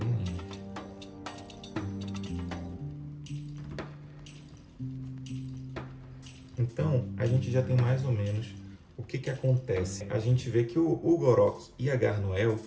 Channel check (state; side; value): identical; both; correlation 1.00